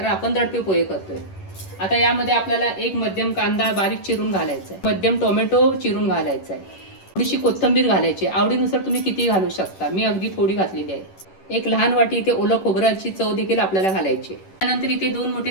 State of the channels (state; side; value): late; right; 11 ms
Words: आपण दडपे पोहे करतोय. आता यामध्ये आपल्याला एक मध्यम कांदा बारीक चिरून घालायचा आहे, मध्यम टोमॅटो चिरून घालायचा आहे, थोडीशी कोथिंबीर घालायची. आवडीनुसार तुम्ही किती घालू शकता. मी अगदी थोडी घातलेली आहे. एक लहान वाटी इथे ओलं खोबऱ्याची चव देखील आपल्याला घालायची. त्यानंतर इथे 2 मोठे